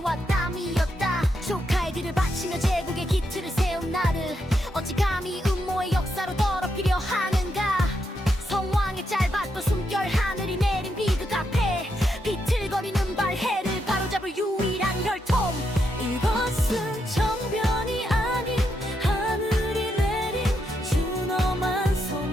땀이었다. 조카의 뒤를 바치며 제국의 기틀을 세운 나를 어찌 감히 음모의 역사로 더럽히려 하는가. 성왕의 짧았던 숨결, 하늘이 내린 비극 앞에 비틀거리는 발해를 바로잡을 유일한 혈통. 이것은 정변이 아닌 하늘이 내린 준엄한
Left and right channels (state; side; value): normal; both; correlation 0.81